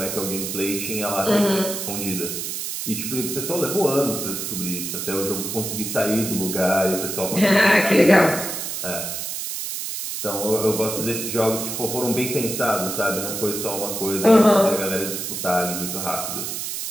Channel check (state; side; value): noise; right; hiss, 4 dB below the sound